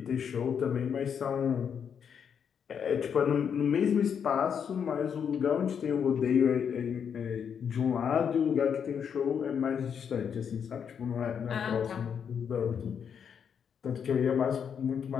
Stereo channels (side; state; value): right; quieter; 7.5 dB